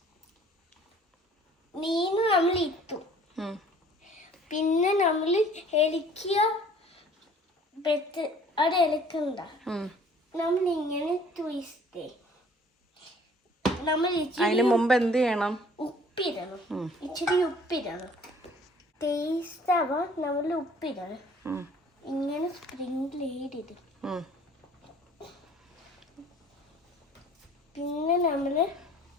നമ്മൾ ഇട്ടു, പിന്നെ നമ്മൾ ഇളക്കിയ അത് ഇളക്കണ്ട. നമ്മൾ ഇങ്ങനെ ട്വിസ്റ്റ്. നമ്മൾ അതിന് മുമ്പ് എന്ത് ചെയ്യണം? ഉപ്പിടണം. ഇച്ചിരി ഉപ്പിടണം. ടേസ്റ്റ് ആവാൻ നമ്മൾ ഉപ്പിടണം. ഇങ്ങനെ സ്പ്രിംഗിൾ ചെയ്തിടും. പിന്നെ നമ്മൾ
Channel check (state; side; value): normal; both; correlation 0.53